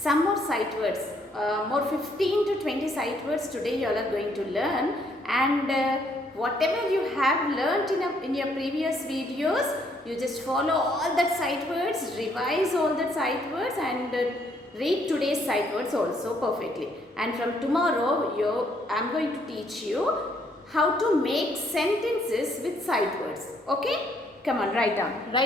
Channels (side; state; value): both; normal; correlation 0.69